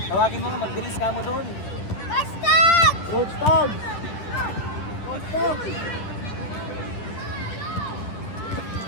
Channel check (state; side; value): late; right; 10 ms